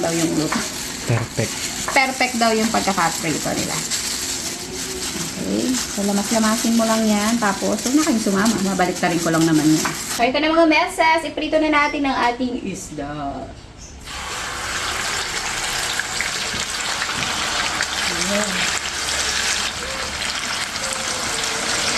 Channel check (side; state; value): both; identical; correlation 1.00